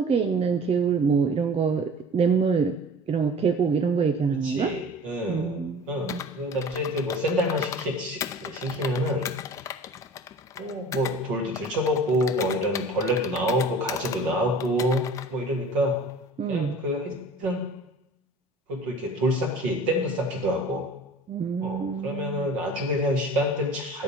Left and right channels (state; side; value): normal; both; correlation 0.43